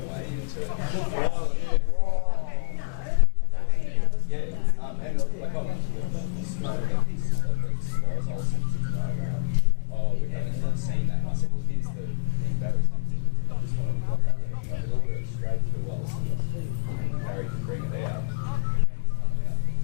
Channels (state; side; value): silent; right; digital silence